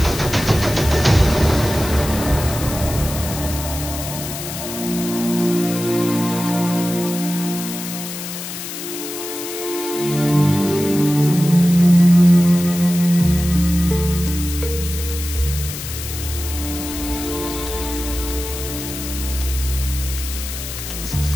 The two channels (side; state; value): left; noise; hiss, 8 dB below the sound